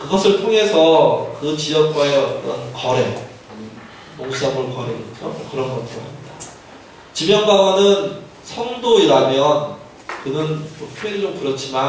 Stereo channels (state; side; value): identical; both; correlation 1.00